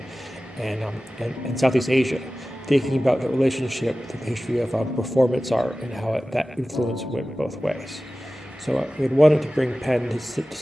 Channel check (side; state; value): both; normal; correlation 0.96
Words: and Southeast Asia, thinking about the relationship, the history of performance art, and how that influence went both ways. So we had wanted to bring Penn to